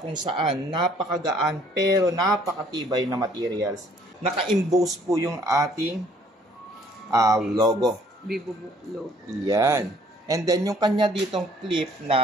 kung saan napakagaan pero napakatibay na materials. Naka-emboss po yung ating logo. VivoBook logo. Yan. And then yung kanya ditong clip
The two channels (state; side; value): normal; both; correlation 0.60